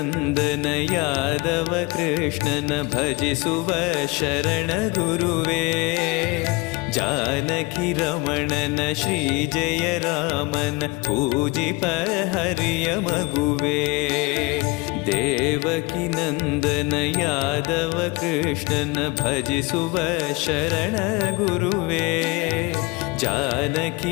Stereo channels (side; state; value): right; quieter; 24.7 dB